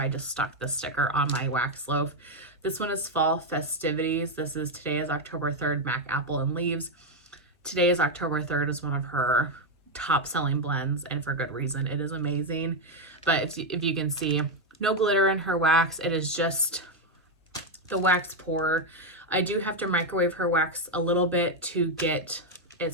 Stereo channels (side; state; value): both; normal; correlation 0.05